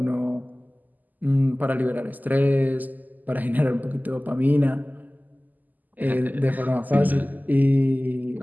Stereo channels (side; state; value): left; late; 0.083 ms